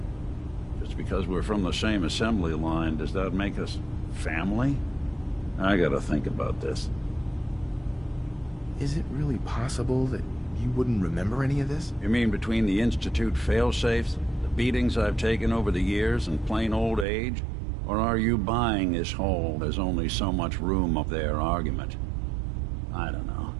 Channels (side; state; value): left; drops out; at 17.1 s